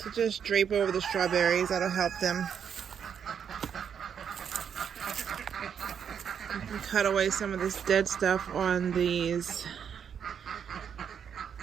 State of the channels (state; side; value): quieter; left; 7.8 dB